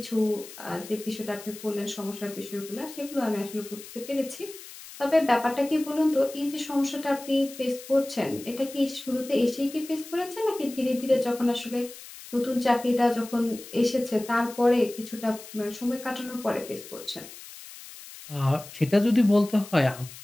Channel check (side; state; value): left; noise; hiss, 16 dB below the sound